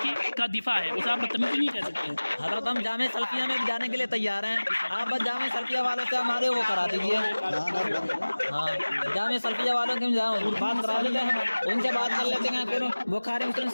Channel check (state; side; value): inverted; both; correlation -1.00